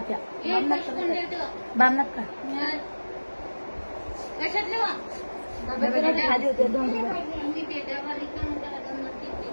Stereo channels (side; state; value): both; inverted; correlation -1.00